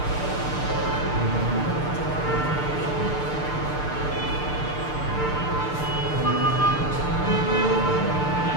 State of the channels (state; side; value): late; right; 6.7 ms